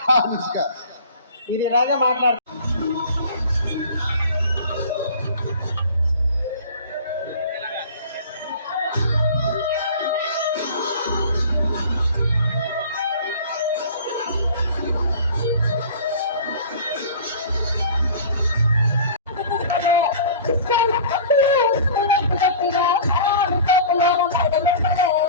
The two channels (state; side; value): inverted; both; correlation -0.41